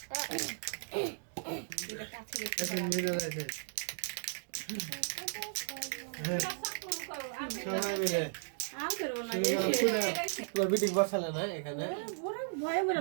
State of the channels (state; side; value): silent; left; digital silence